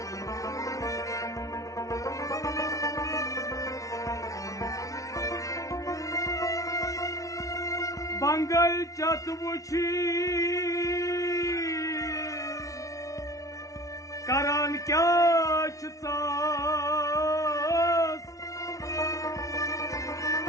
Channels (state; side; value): late; right; 0.17 ms